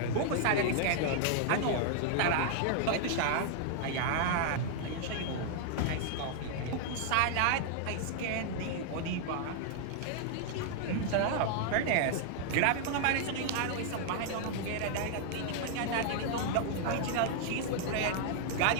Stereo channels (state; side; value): different; both; correlation 0.00